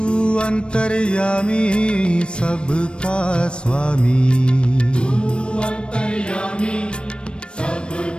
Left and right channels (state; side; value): late; right; 0.056 ms